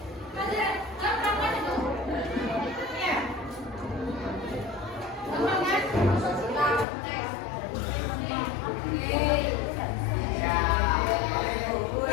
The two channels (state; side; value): drops out; right; at 6.9 s